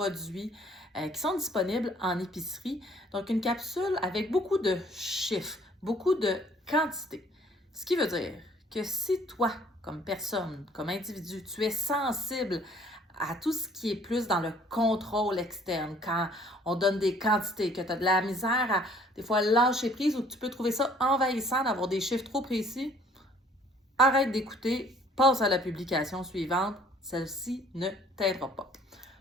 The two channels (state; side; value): normal; both; correlation 0.58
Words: qui sont disponibles en épicerie. Donc, une capsule avec beaucoup de chiffres, beaucoup de quantité. Ce qui veut dire que si toi, comme personne, comme individu, tu es sensible à tout ce qui est plus dans le contrôle externe, quand on donne des quantités, que tu as de la misère à des fois lâcher prise ou que tu peux trouver ça envahissant d'avoir des chiffres trop précis, arrête d'écouter, passe à la publication suivante, celle-ci ne t'aidera pas.